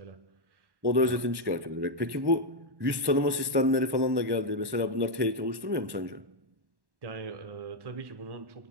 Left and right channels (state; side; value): late; left; 1.1 ms